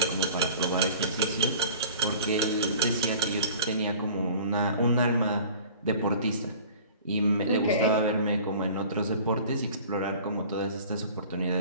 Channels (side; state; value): both; inverted; correlation -0.44